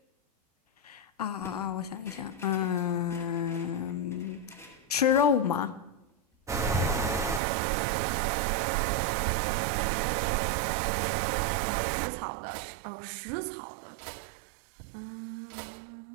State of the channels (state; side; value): drops out; left; at 7.4 s